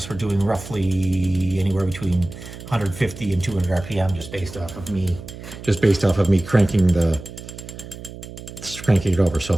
we're doing roughly anywhere between 150 and 200 RPM, just based off of me cranking it over. So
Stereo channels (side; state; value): right; noise; hum, 13 dB below the sound